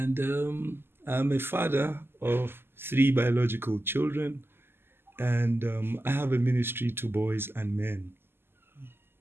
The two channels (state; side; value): late; left; 0.11 ms